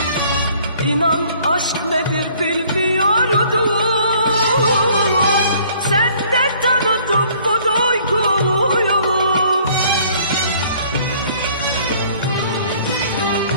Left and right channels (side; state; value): both; inverted; correlation -0.57